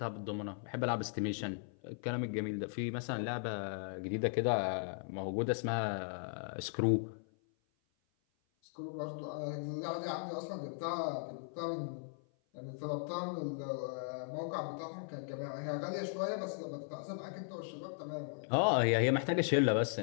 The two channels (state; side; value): silent; right; 53 dB below the other